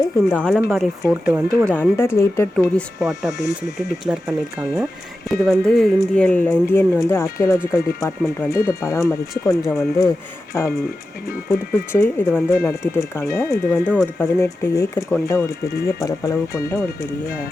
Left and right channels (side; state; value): both; normal; correlation 0.92